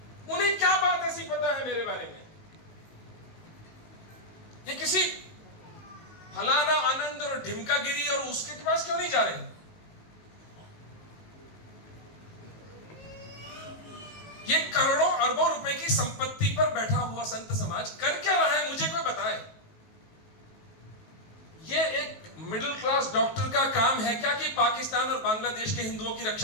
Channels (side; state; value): right; late; 19 ms